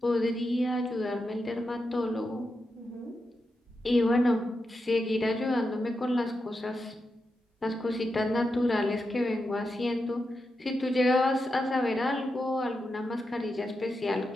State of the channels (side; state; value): both; normal; correlation 0.88